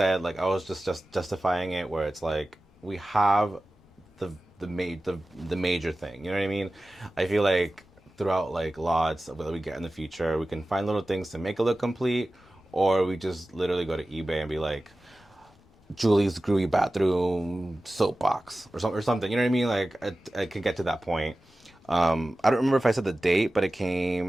like I was just justifying it, where it's like we have the the major thing, you know what I mean? I feel like throughout like lots of what we get in the future, we can find little things to make it look complete, or we just literally go to eBay and be like, Julie's Groovy Bathroom Soapbox or something. You know what I mean? Like I can get to that point. I don't remember if I said the date, but it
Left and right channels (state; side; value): normal; both; correlation 0.96